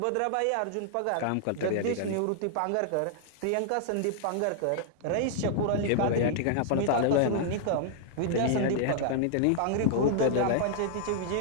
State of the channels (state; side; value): different; both; correlation -0.01